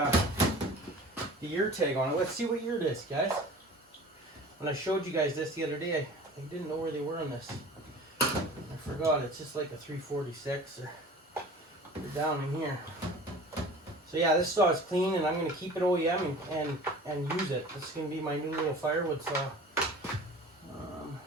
year tag on it. Let's see what year it is, guys. When I showed you guys this the other day, I didn't know where they were on this. I forgot. It's just like a 346 or down in here. So yeah, this saw is clean, and I'm going to keep it OEM and use it. This is going to be my new little firewood saw.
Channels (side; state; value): both; normal; correlation 0.42